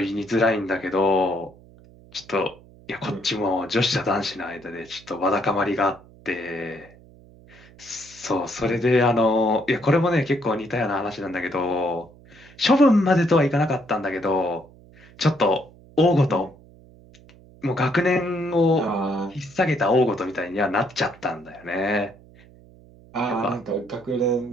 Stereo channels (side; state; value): right; noise; hum, 24 dB below the sound